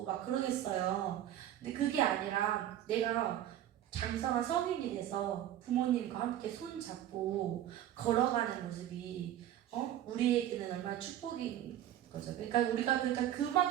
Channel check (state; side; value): quieter; left; 12.0 dB